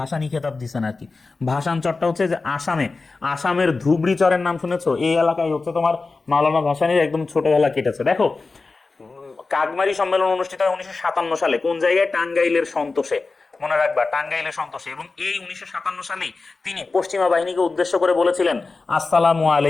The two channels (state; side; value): quieter; right; 3.9 dB